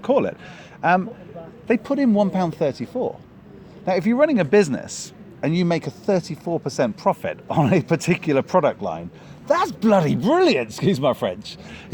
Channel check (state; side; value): identical; both; correlation 1.00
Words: call it, they put in £1.34. Now, if you're running a business and you make a 34% profit on a particular product line, that's bloody brilliant, excuse my French.